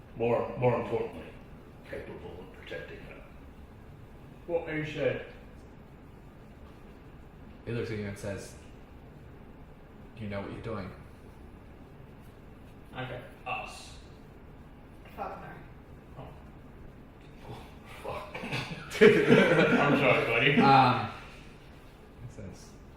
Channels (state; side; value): identical; both; correlation 1.00